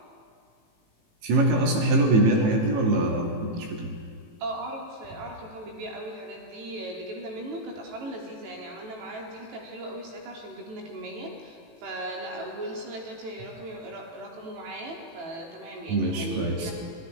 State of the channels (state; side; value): late; left; 18 ms